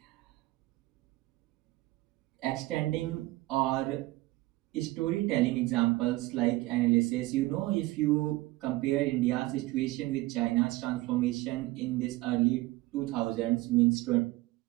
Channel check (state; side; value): quieter; left; 19.3 dB